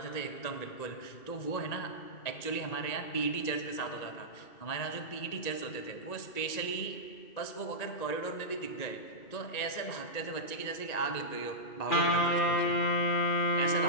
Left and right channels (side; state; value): right; late; 1.9 ms